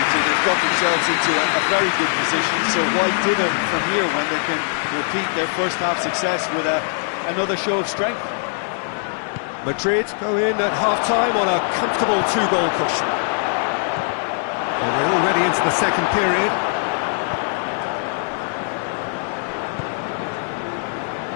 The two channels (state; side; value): silent; right; 65 dB below the other